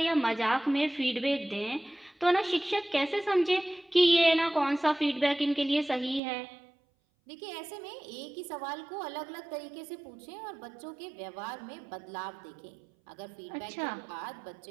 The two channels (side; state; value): left; drops out; at 6.2 s